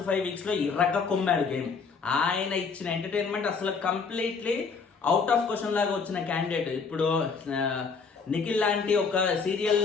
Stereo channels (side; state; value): right; quieter; 5.2 dB